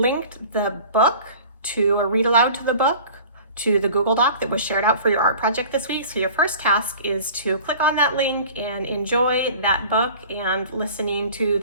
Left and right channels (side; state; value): both; inverted; correlation -0.43